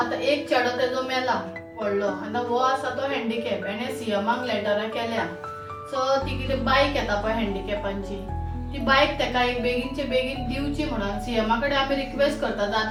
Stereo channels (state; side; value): identical; both; correlation 1.00